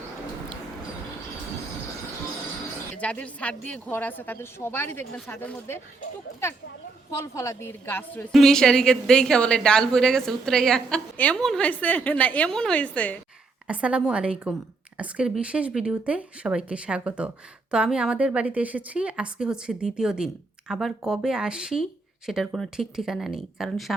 যাদের ছাদ দিয়ে ঘর আছে তাদের সবারই দেখবেন ছাদের মধ্যে টুকটাক ফল ফলাদির গাছ রয়েছে। মিশারিকে দেখে বলে ডাল পড়ে গেছে উতরাইয়া। এমন হয়েছে না এমন হয়েছে। আসসালামু আলাইকুম। আজকের বিশেষ ভিডিওতে সবাইকে স্বাগত। তো আমি আমাদের বাড়িতে এসেছি, আজকে হচ্ছে দ্বিতীয় দিন। আবার কবে আসি সেটার কোনো ঠিক ঠিকানা নেই, কারণ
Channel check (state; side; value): quieter; left; 3.8 dB